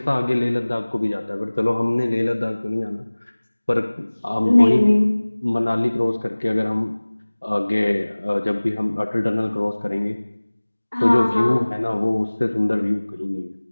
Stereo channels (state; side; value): inverted; both; correlation -1.00